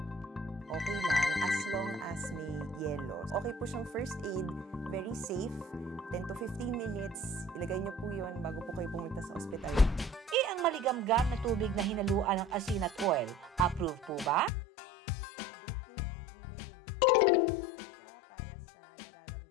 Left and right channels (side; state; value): right; drops out; at 14.5 s